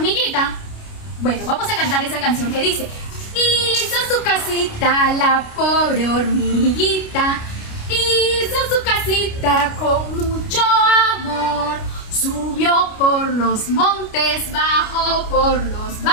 Bueno, vamos a cantar esa canción que dice: hizo su casita la pobre hormiguita, hizo su casita con mucho amor. Subió por los montes, bajó por los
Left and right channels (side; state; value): right; late; 29 ms